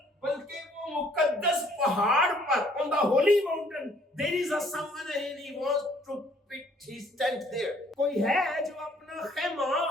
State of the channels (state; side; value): normal; both; correlation 0.61